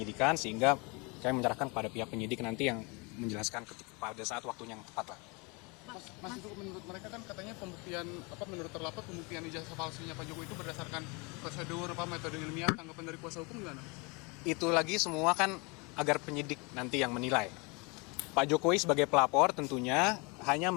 sehingga kami menyerahkan kepada pihak penyidik nanti yang menjelaskan pada saat waktunya yang tepat lah. Mas itu menurut mereka kan katanya pembuktian menurut terlapor pembuktian ijazah palsunya Pak Jokowi itu berdasarkan prosedur metode ilmiah, tanggapan dari kuasa hukum gimana? Itu lagi semua kan agar penyidik nanti yang menilai. Pak Jokowi sebagai pelapor tentunya hanya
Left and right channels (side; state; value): right; quieter; 29.4 dB